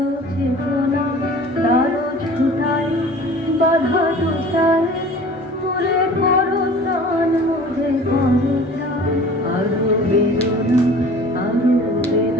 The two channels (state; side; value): normal; both; correlation 0.44